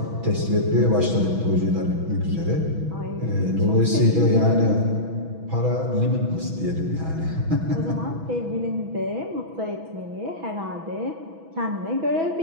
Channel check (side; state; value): left; late; 6.1 ms